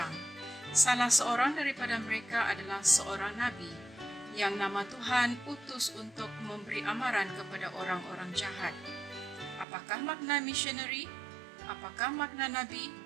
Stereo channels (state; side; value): drops out; left; at 9.7 s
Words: Salah seorang daripada mereka adalah seorang nabi yang nama Tuhan utus untuk memberi amaran kepada orang-orang jahat. Apakah makna misionari? Apakah makna nabi?